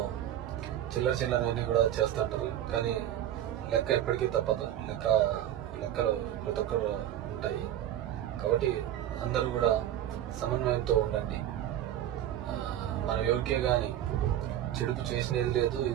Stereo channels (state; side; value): quieter; left; 11.7 dB